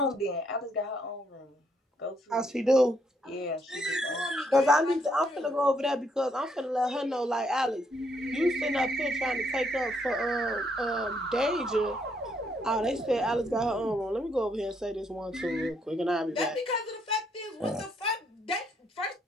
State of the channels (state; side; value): normal; both; correlation 0.73